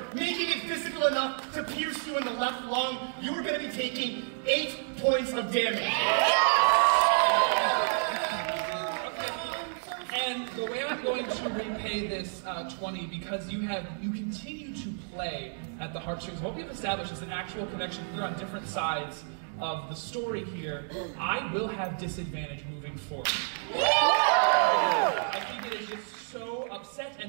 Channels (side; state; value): left; silent; digital silence